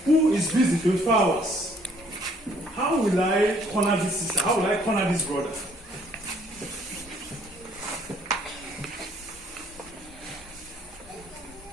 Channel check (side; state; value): both; normal; correlation 0.63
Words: who is busy 24 hours. How will I corner this sister? How will I corner this brother?